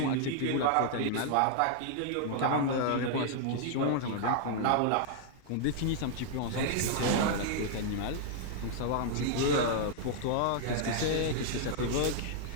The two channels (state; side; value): different; both; correlation -0.01